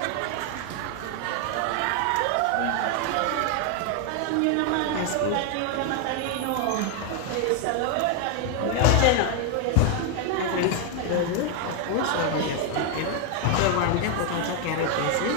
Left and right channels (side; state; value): both; different; correlation 0.01